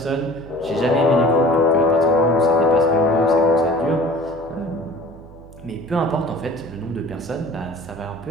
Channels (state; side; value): noise; right; hum, 19 dB below the sound